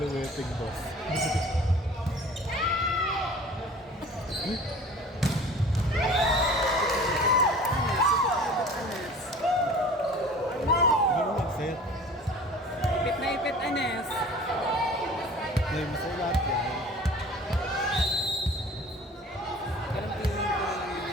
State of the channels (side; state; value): both; normal; correlation 0.44